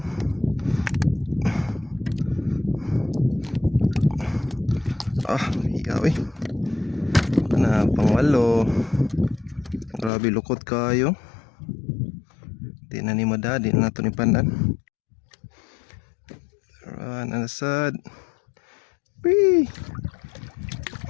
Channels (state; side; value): drops out; right; at 10.1 s